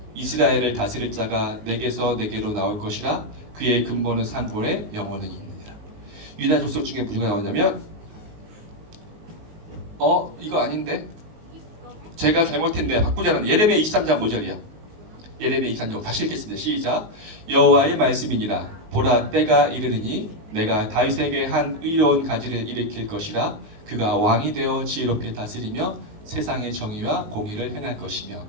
이스라엘을 다스릴 자가 내게서 내게로 나올 것이라 그의 근본은 산골에 영원은 있느니라. 유다 족속 중에 누가 나오냐면 이거 아닌데 제가 잘못했는데 바꾸자는 예레미야 23장 5절이야. 예레미야 23장 다시 읽겠습니다. 시작. 여호와의 말씀이니라. 보라 때가 이르르니 내가 다윗에게 한 의로운 가지를 일으킬 것이라. 그가 왕이 되어 지혜롭게 다스리며 세상의 정의와 공의를 행할 것이며.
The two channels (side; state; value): left; late; 19 ms